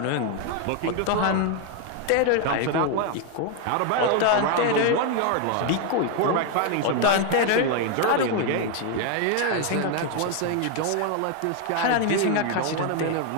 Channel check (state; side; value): different; both; correlation 0.01